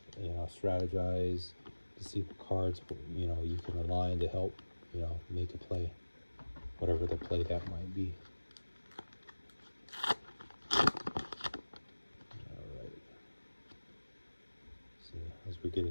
you know, strategize to see what cards, you know, you can align to help, you know, make a play, whatever the play that might be. All right. So as we're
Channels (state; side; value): inverted; both; correlation -1.00